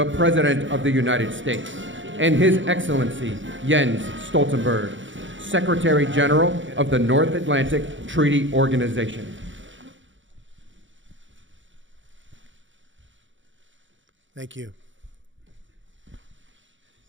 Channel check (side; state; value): left; late; 0.55 ms